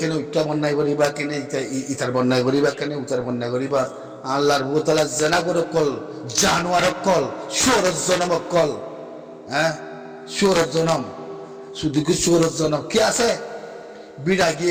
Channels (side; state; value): both; identical; correlation 1.00